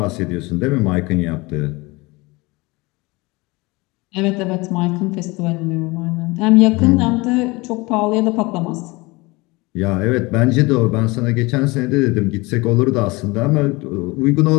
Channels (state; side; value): quieter; right; 23.9 dB